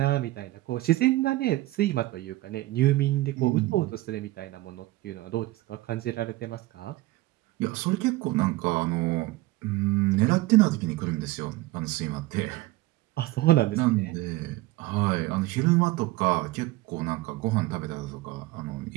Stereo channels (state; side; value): quieter; left; 18.4 dB